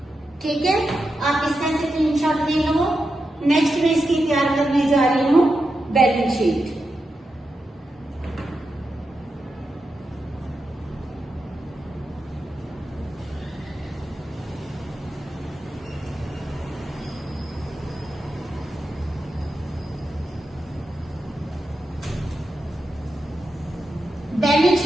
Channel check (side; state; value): both; normal; correlation 0.88